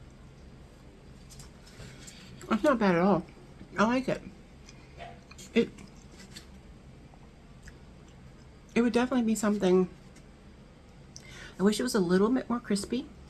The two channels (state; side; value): identical; both; correlation 1.00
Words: That's not bad at all. I like it. It would definitely be something. I wish it was a little bit more crispy.